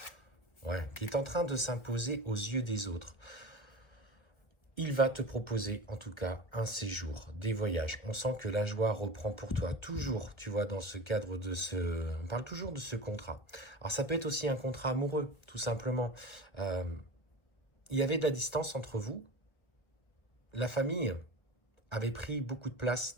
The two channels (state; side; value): late; right; 1.4 ms